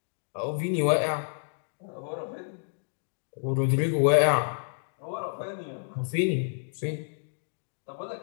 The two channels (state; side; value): silent; right; digital silence